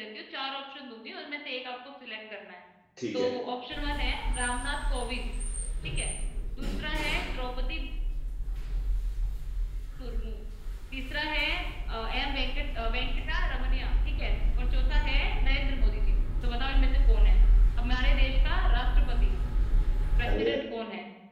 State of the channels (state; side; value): identical; both; correlation 1.00